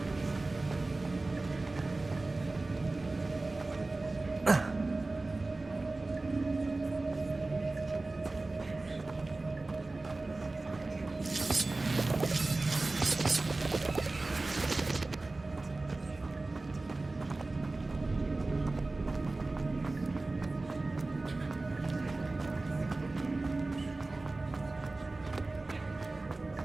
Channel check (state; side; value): quieter; left; 3.2 dB